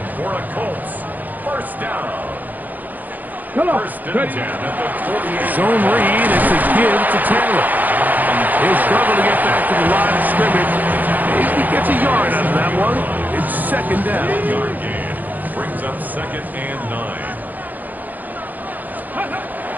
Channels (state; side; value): late; left; 0.083 ms